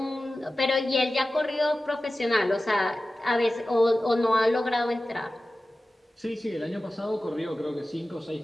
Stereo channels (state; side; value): normal; both; correlation 0.95